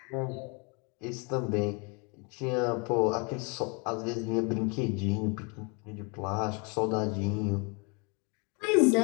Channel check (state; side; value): quieter; right; 32.6 dB